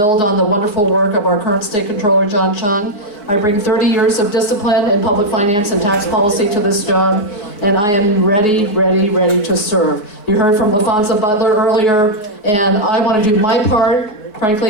on the wonderful work of our current state controller, John Chung. I bring 30 years of discipline in public finance and tax policy to this job, and I am ready to serve. You heard from LaFonza Butler earlier, and I want to do my part.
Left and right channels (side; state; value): right; late; 4.7 ms